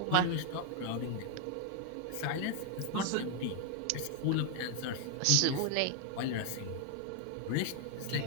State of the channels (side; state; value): both; different; correlation 0.00